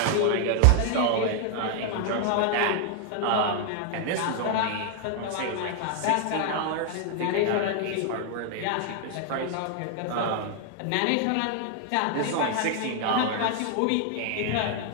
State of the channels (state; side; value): different; both; correlation 0.00